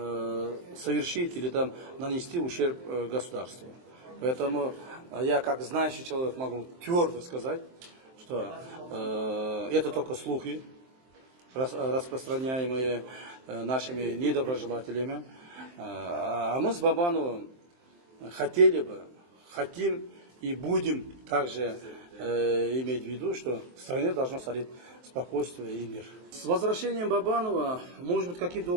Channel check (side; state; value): left; late; 23 ms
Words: совершить или там нанести ущерб государству. Поэтому я, как знающий человек, могу твердо сказать, что это только слухи, распространяемые нашими недоброжелателями. А мы с Бабановым хотим и будем также иметь в виду, что в стране должно царить спокойствие и мир. С возвращением Бабанова, может быть, каким-то